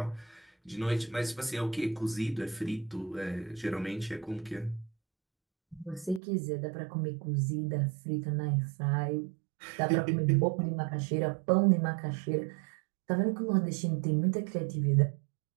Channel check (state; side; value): drops out; left; at 6.2 s